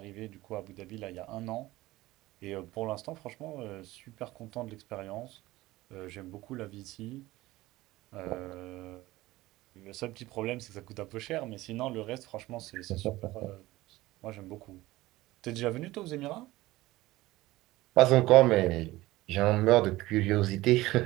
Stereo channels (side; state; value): left; quieter; 18.2 dB